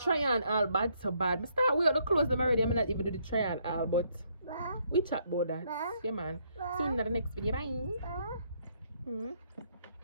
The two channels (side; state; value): both; inverted; correlation -0.71